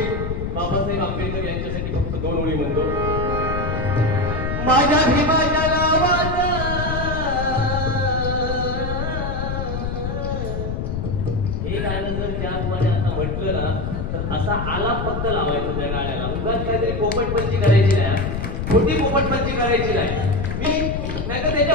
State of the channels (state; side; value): noise; left; rumble, 3 dB below the sound